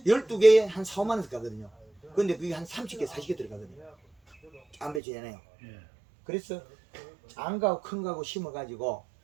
12개에 한 4, 5만 원씩 가거든요. 근데 그게 한 30개, 40개 들어가거든요. 작은 배추잖아요. 예. 그래서 작은 거하고 큰 거하고 심어가지고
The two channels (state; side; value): drops out; left; at 5.0 s